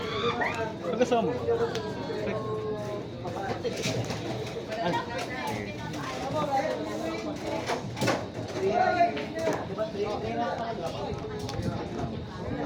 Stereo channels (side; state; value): both; identical; correlation 1.00